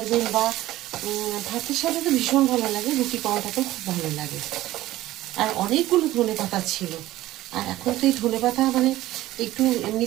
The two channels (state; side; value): quieter; left; 15.8 dB